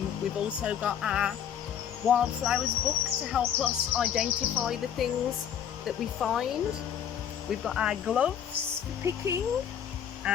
We've also got our wildflowers book to help us identify the things that we find. We've got our gloves for picking.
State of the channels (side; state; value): right; quieter; 9.0 dB